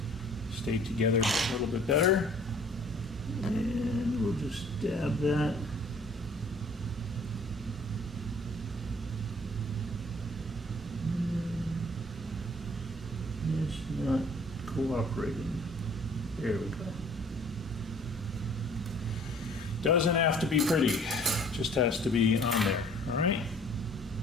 together a little bit better. And we'll just dab that. It's not cooperating. There we go. Doesn't have to be pretty, just has to be on there, all right?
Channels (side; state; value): both; normal; correlation 0.54